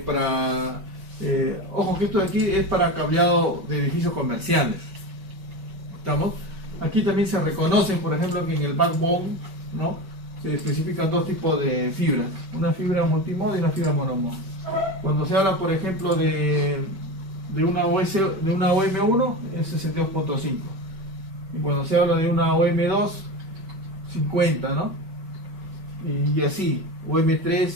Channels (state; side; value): late; left; 5.2 ms